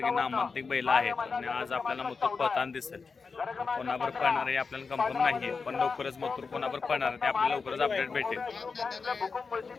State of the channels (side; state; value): right; quieter; 4.8 dB